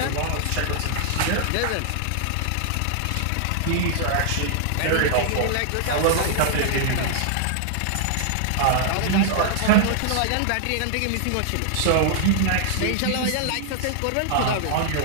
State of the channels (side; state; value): both; different; correlation -0.01